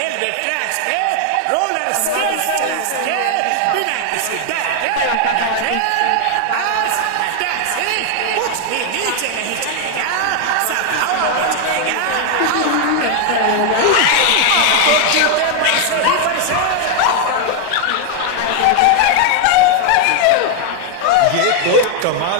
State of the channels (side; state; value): both; different; correlation 0.00